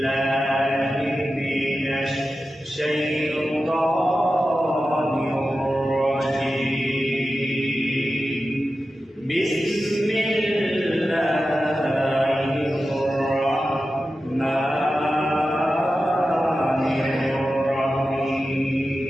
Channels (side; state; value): both; normal; correlation 0.92